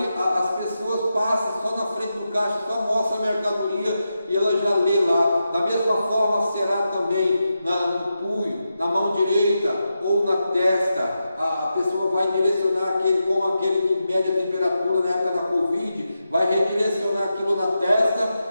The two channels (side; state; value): both; inverted; correlation -0.88